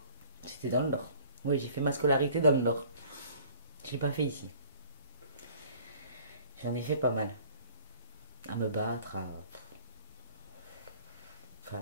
C'était dans le Nord. Oui, j'ai fait ma scolarité dans le Nord. Je l'ai pas fait ici. J'en ai fait pas mal. À me battre, à faire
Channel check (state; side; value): inverted; both; correlation -0.51